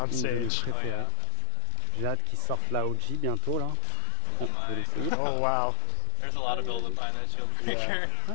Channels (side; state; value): both; different; correlation 0.00